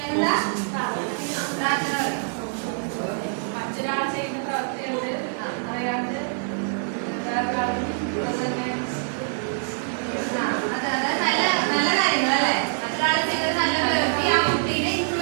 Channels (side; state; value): left; silent; digital silence